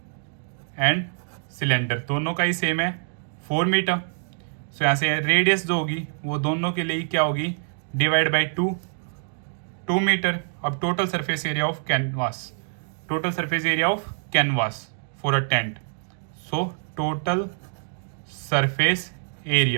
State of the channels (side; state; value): left; silent; digital silence